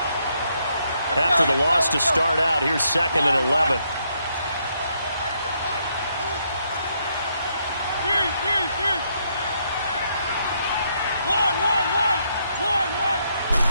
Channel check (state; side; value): inverted; both; correlation -0.75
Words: After the loss to start out, here's 2nd and 11.